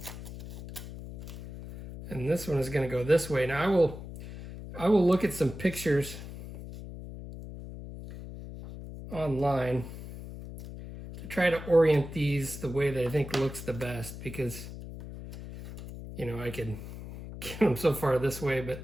And this one is going to go this way. Now I will look at some pictures online to try to orient these the way that I think looks the best, because, you know, I could get them so far this way,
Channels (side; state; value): left; noise; hum, 11 dB below the sound